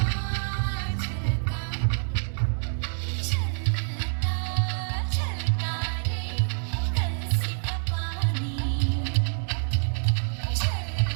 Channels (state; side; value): silent; left; digital silence